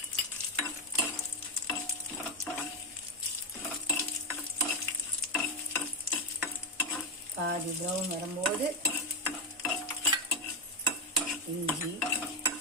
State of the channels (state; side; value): normal; both; correlation 0.08